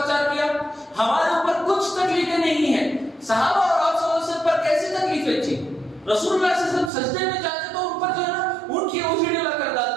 کیا؟ ہمارے اوپر کچھ تکلیفیں نہیں ہیں، صحابہ اور آپ صلی اللہ علیہ وسلم پر کیسی تکلیفیں تھی؟ رسول اللہ صلی اللہ علیہ وسلم سجدے میں جاتے تو ان پر جو ہے نا ان کی اوجھڑی لا کر ڈال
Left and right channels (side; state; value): left; drops out; at 6.9 s